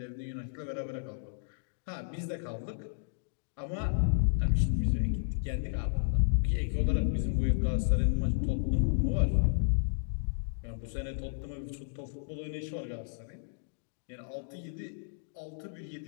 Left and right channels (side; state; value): right; silent; digital silence